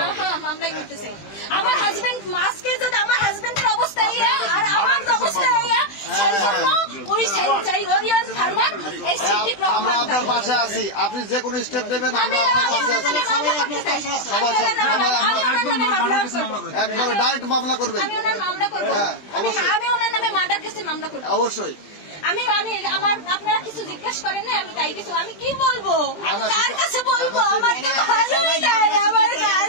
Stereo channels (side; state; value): right; late; 20 ms